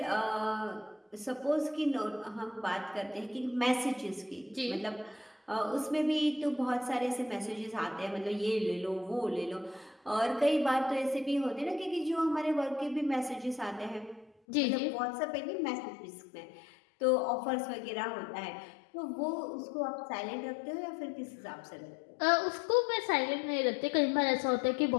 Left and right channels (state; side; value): drops out; right; at 14.3 s